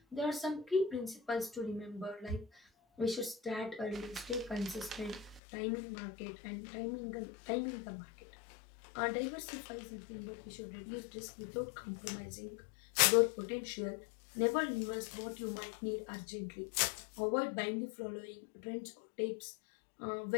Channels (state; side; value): drops out; right; at 5.4 s